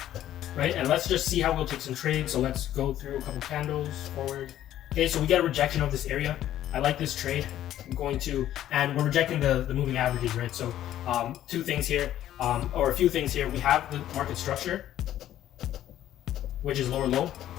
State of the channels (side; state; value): right; quieter; 12.3 dB